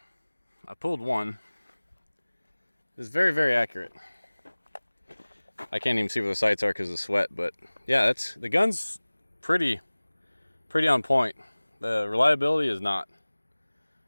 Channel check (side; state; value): both; inverted; correlation -1.00